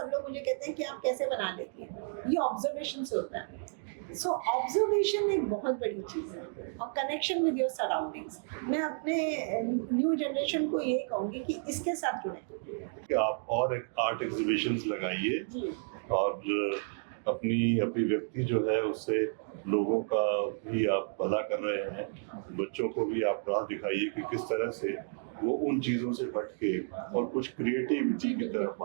लोग मुझे कहते हैं कि आप कैसे बना लेती हैं, ये ऑब्जर्वेशन से होता है। सो ऑब्जर्वेशन एक बहुत बड़ी चीज़ है, और कनेक्शन विद योर सराउंडिंग्स। मैं अपने न्यू जनरेशन को ये कहूँगी कि इसके साथ जुड़ें कि आप और एक आर्ट एग्जीबिशंस लगाइए और अपनी अभिव्यक्ति जो है उससे लोगों का भी आप भला कर रहे हैं। बच्चों को भी आप राह दिखाइए कि किस तरह से वो उन चीज़ों से हट के और कुछ क्रिएटिविटी की तरफ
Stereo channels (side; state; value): left; silent; digital silence